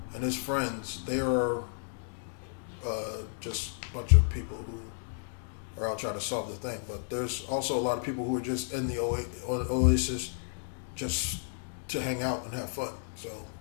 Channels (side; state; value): right; silent; digital silence